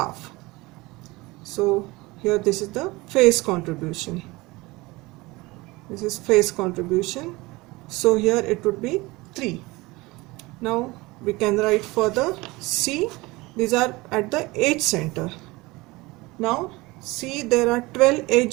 So here this is the face contribution. This is face contribution. So here it would be 3. Now we can write further C. These are at the edge center. Now C, there are 12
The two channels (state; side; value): quieter; left; 22.1 dB